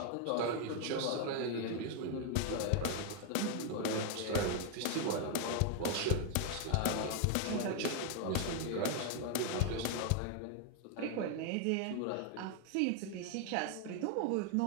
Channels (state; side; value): different; both; correlation 0.00